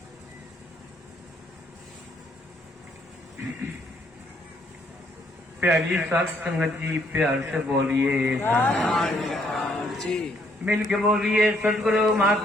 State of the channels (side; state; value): both; normal; correlation 0.69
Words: प्यारी साथ संगत जी प्यार से बोलिए जी। मिल के बोलिए सदगुरु